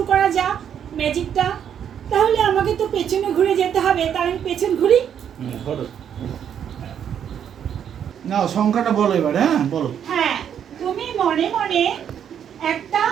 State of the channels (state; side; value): quieter; left; 8.8 dB